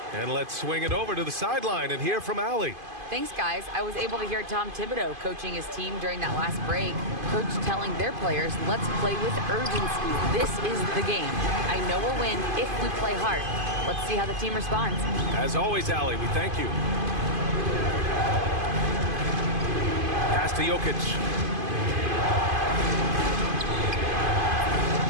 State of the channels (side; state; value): left; late; 2.5 ms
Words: And let's swing it over to the sideline and hear from Allie. Thanks, guys. I was able to hear Tom Thibodeau coaching his team during that last break. Coach telling their players, let's play with urgency. This is the game. I know we'll win if we play hard. Let's see how the team responds. As always, Allie, we thank you. Pass to Jokic.